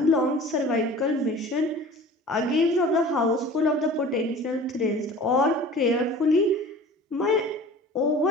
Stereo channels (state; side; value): normal; both; correlation 0.42